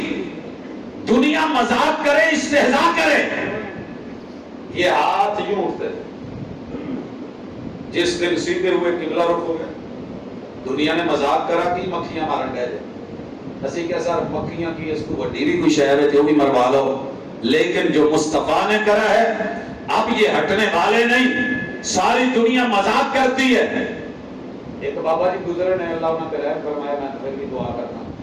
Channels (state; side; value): identical; both; correlation 1.00